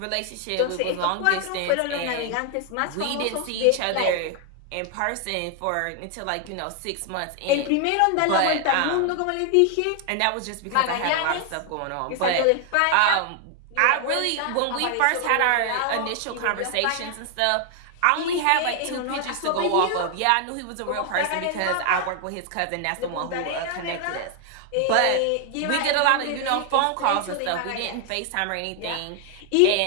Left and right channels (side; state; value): both; different; correlation 0.00